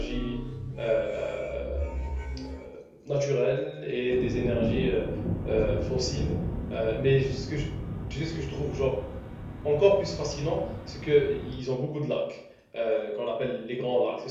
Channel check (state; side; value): identical; both; correlation 1.00